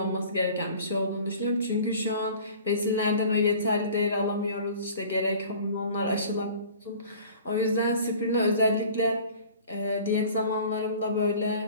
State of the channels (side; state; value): both; inverted; correlation -0.45